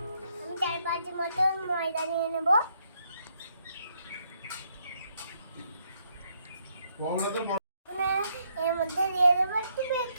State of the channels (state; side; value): inverted; both; correlation -0.74